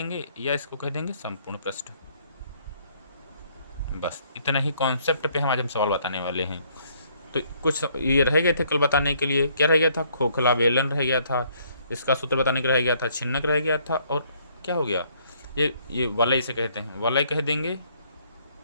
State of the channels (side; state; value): both; inverted; correlation -0.65